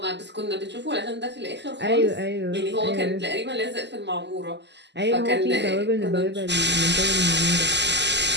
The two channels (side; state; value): left; late; 0.51 ms